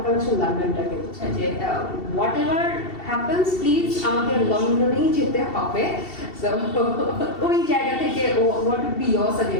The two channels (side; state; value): right; late; 2.7 ms